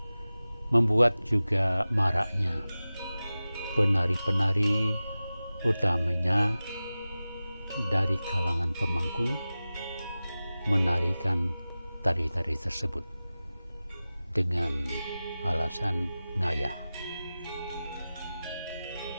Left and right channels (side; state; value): both; inverted; correlation -0.96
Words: membuat juga maraknya penari-penari, utamanya dari kalangan pemangku, menarikan tari-tari tersebut dengan alasan ngayah.